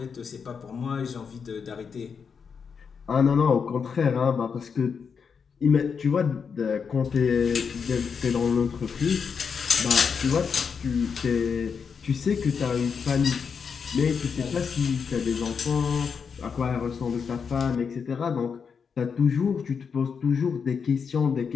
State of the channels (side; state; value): right; quieter; 6.2 dB